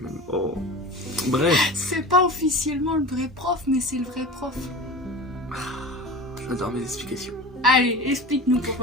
même. Oh. Bref. C'est pas officiellement le vrai prof, mais c'est le vrai prof. J'adore mes explications. Allez, explique-nous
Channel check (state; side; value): normal; both; correlation 0.34